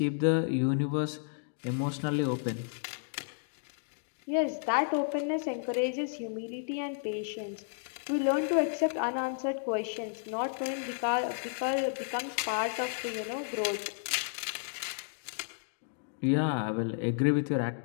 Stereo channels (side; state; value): right; silent; digital silence